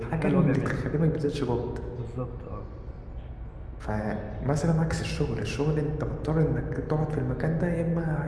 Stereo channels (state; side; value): identical; both; correlation 1.00